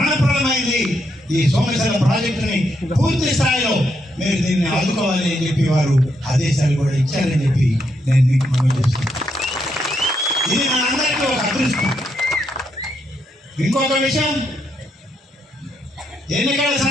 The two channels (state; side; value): normal; both; correlation 0.79